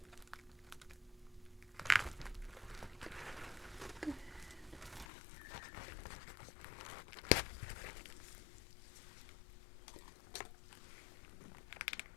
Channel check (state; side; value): drops out; right; at 5.1 s